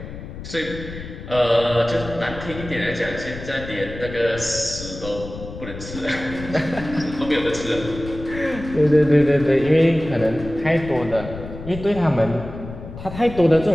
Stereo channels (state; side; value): noise; left; rumble, 12 dB below the sound